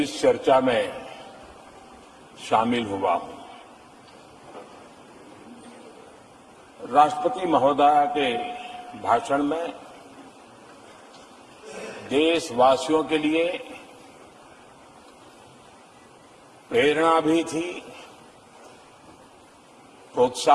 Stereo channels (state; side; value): identical; both; correlation 1.00